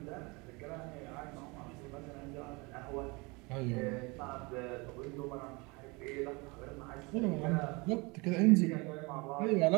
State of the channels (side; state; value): left; quieter; 26.9 dB